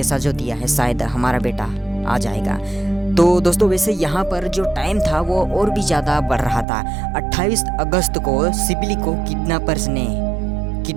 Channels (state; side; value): drops out; left; at 6.7 s